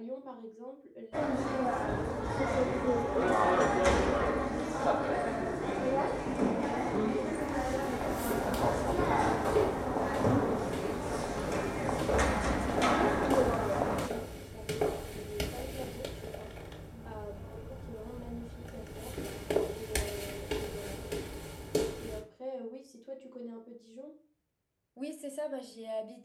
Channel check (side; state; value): both; identical; correlation 1.00